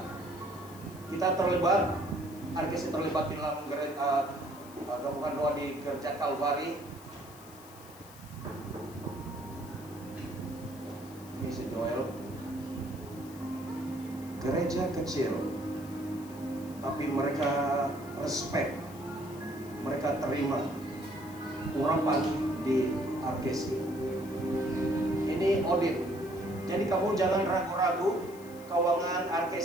kita terlibat. RKC terlibat di dalam gabungan doa di gereja Kalvari. Ini si Joel. Gereja kecil, tapi mereka respect, mereka terima urapan di RKC. Ini audit. Jadi kamu jangan ragu-ragu keuangan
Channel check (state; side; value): noise; left; hiss, 20 dB below the sound